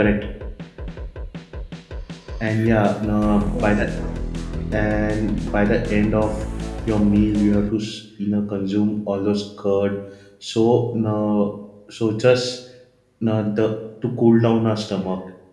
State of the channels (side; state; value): both; identical; correlation 1.00